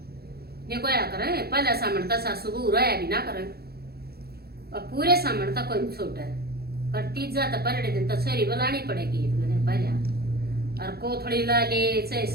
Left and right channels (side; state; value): left; late; 0.46 ms